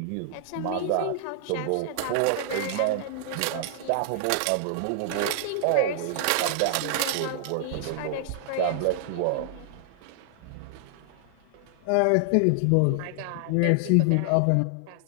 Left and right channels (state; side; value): different; both; correlation -0.01